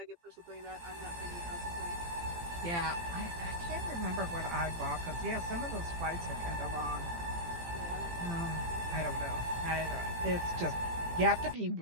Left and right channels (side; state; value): left; late; 18 ms